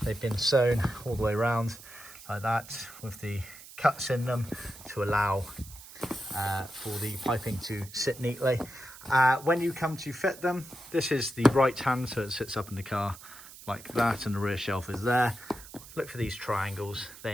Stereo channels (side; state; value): right; noise; hiss, 17 dB below the sound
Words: they've been sewn all the way around like that with the cuts in them to allow for the piping to sit neatly. When you come to fit them, this is the right hand, so it sits up in the car like that and the rear shelf is there. Look for these triangles,